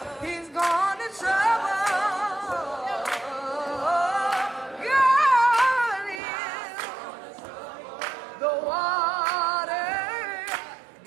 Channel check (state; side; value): drops out; left; at 6.2 s